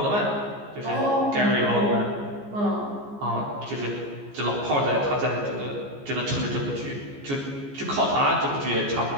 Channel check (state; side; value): late; left; 14 ms